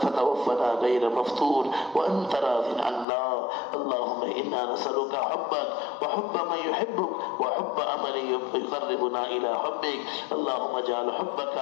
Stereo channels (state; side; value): drops out; right; at 3.1 s